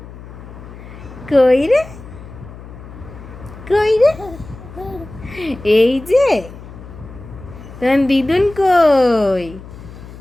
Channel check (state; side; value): noise; left; hum, 16 dB below the sound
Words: কই রে কই রে, এই যে তোমার দিদুন কই?